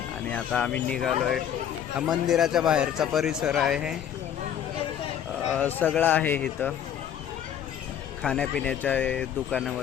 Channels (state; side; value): quieter; right; 9.5 dB